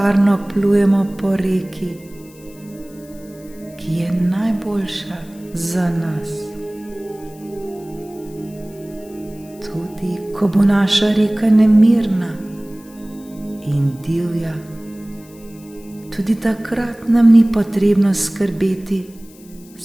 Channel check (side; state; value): left; noise; hiss, 25 dB below the sound